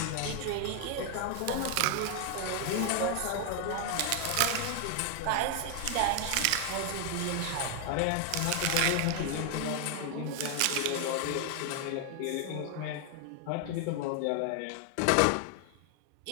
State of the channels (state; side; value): different; both; correlation 0.00